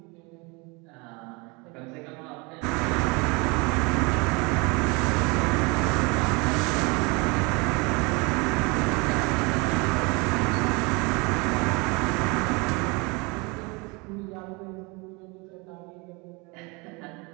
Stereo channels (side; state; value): left; quieter; 27.9 dB